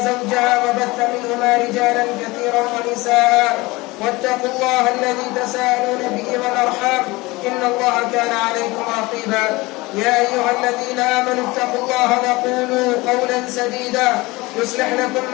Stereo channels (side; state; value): right; quieter; 22.0 dB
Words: زوجها وبث منهما رجالا كثيرا ونساء واتقوا الله الذي تساءلون به والأرحام إن الله كان عليكم رقيبا. يا أيها الذين آمنوا اتقوا الله وقولوا قولا سديدا يصلح لكم